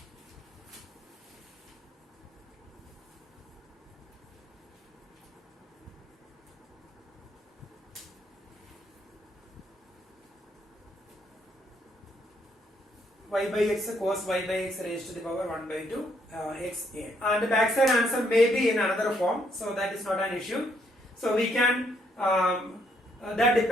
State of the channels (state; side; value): normal; both; correlation 0.72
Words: y by x cos y by x raised to the power 1 by 2 x a. And the backside answer may be in another form, so that is not an issue. So we can that